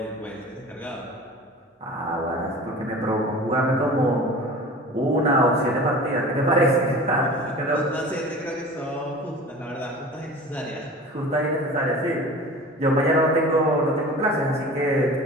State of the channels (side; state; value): both; normal; correlation 0.39